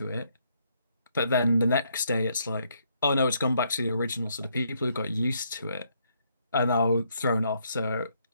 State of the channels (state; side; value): inverted; both; correlation -0.72